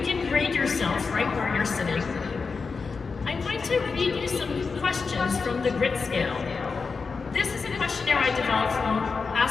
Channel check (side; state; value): right; quieter; 4.8 dB